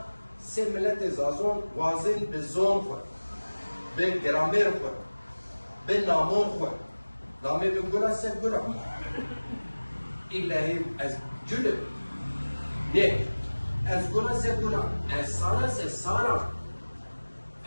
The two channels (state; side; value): inverted; both; correlation -1.00